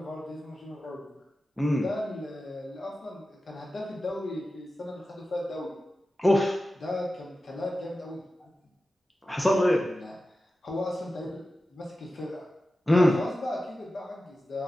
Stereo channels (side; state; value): both; normal; correlation 0.93